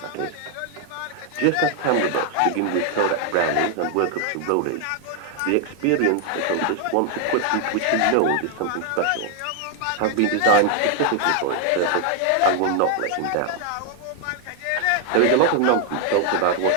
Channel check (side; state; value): both; different; correlation 0.00